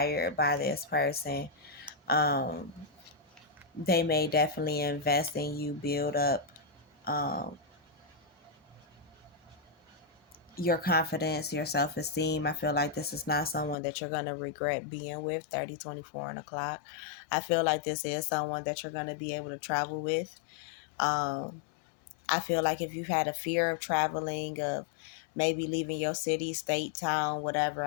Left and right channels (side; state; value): right; drops out; at 13.8 s